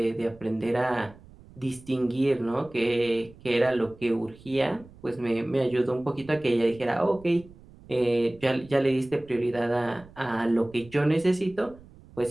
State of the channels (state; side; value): noise; right; rumble, 22 dB below the sound